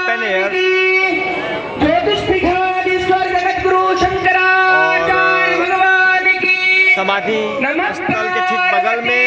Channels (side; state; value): both; identical; correlation 1.00